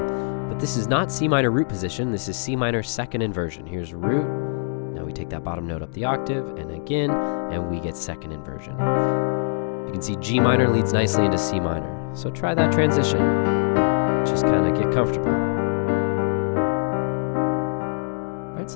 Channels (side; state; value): right; silent; 63 dB below the other